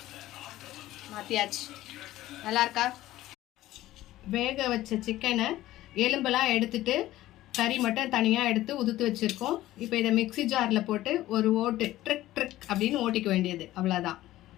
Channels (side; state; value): right; quieter; 15.4 dB